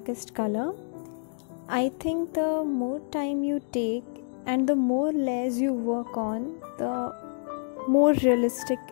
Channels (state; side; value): silent; right; 60 dB below the other